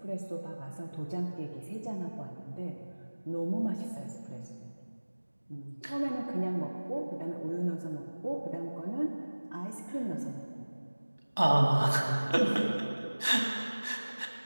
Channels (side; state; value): both; inverted; correlation -1.00